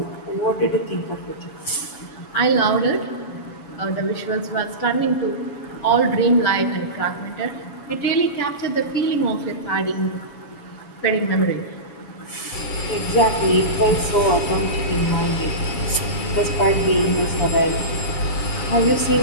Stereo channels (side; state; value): right; late; 7.1 ms